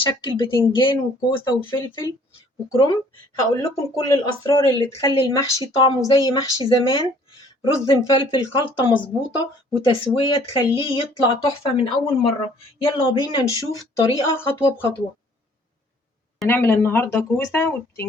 بتنجان وكوسة وفلفل وكرنب. هقول لكم كل الأسرار اللي تخلي المحشي طعمه زي محشي زمان. رز مفلفل، خلطة مظبوطة وتسوية تخليه يطلع تحفة من أول مرة. يلا بينا نشوف الطريقة خطوة بخطوة. هنعمل النهاردة كوسة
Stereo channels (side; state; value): both; normal; correlation 0.58